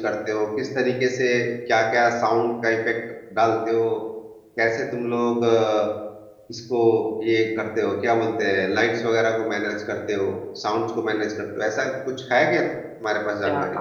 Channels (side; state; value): both; identical; correlation 1.00